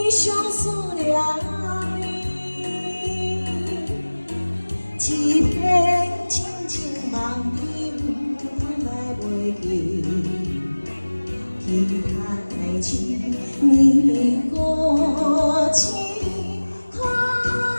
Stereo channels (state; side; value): inverted; both; correlation -1.00